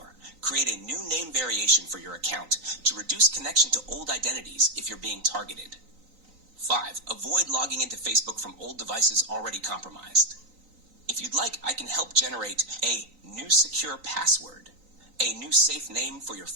Create a new name variation for your account to reduce connection to old identities if you're being targeted. 5. Avoid logging into Facebook from old devices already compromised. If you'd like, I can help generate a new secure password, a new safe name for your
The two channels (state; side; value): late; left; 3.9 ms